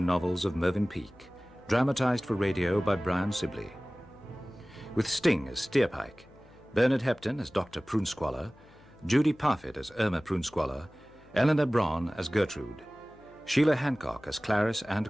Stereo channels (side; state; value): left; noise; hum, 26 dB below the sound